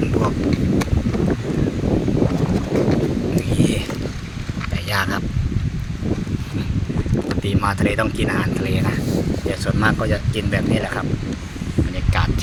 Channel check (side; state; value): both; identical; correlation 1.00